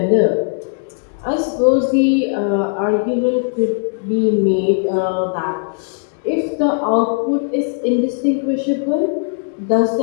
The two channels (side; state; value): right; silent; digital silence